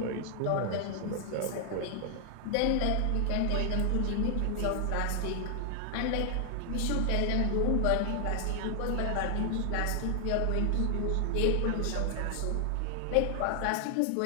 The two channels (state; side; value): different; both; correlation 0.00